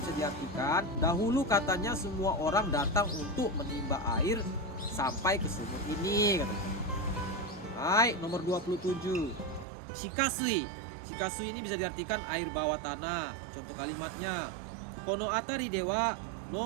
diartikan, dahulu katanya semua orang datang untuk menimba air sampai ke sumur ini katanya. Hai, nomor 27. Shikasui. Shikasui ini bisa diartikan air bawah tanah. Contoh kalimatnya. Kono atari dewa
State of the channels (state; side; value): drops out; left; at 9.7 s